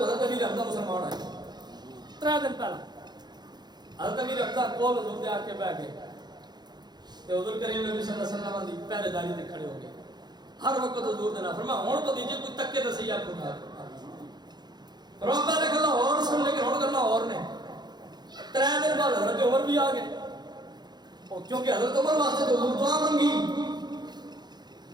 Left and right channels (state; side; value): late; left; 0.20 ms